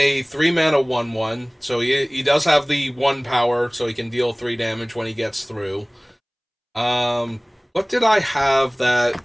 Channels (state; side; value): identical; both; correlation 1.00